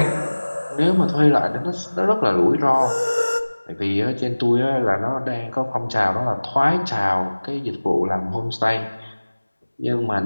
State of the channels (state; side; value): inverted; both; correlation -1.00